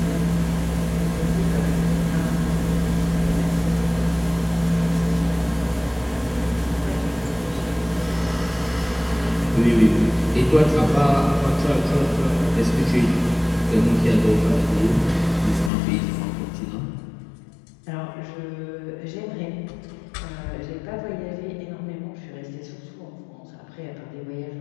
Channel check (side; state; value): right; drops out; at 15.7 s